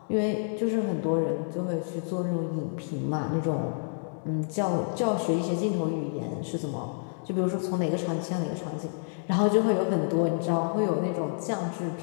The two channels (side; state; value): right; silent; digital silence